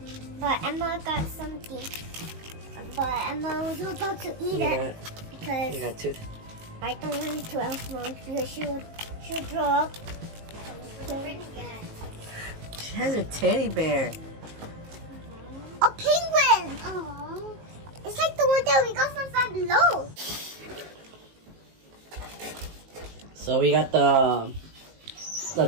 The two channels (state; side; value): late; left; 19 ms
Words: but Emma got something. But Emma was about to eat it because You got tooth? I don't want it to Elf because she'll throw up. She has a teddy bear. A penguin! Oh, it's like the one that we got from Five Below. So we got the